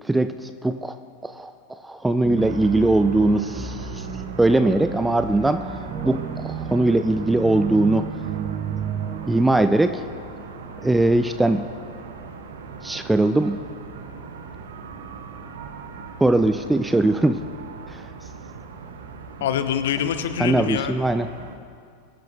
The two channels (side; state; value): both; normal; correlation 0.82